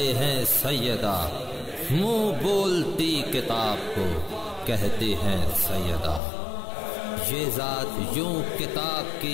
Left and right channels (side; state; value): right; drops out; at 6.2 s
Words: हैं सैयदा, मुंह बोलती किताब को कहते हैं सैयदा। ये ज़ात यूं किताब